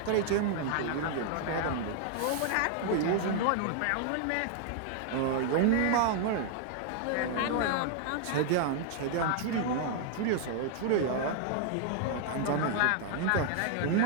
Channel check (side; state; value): both; different; correlation 0.00